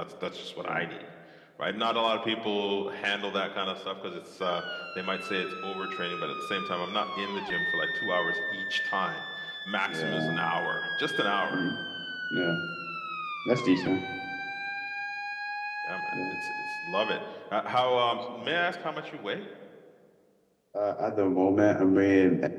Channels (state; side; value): identical; both; correlation 1.00